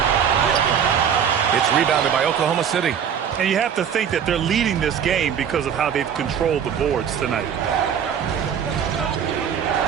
It's rebounded by Oklahoma City. And you have to think that they're leading this game because of how they've controlled the boards tonight.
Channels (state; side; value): quieter; left; 8.1 dB